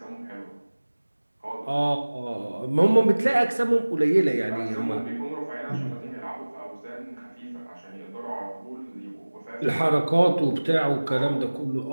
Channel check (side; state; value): both; inverted; correlation -1.00